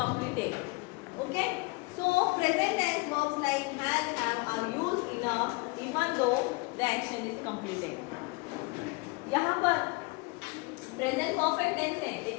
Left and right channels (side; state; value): right; quieter; 26.8 dB